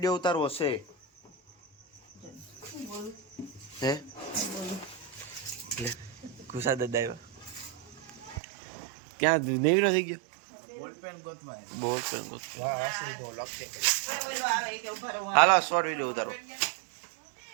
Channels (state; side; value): drops out; left; at 8.4 s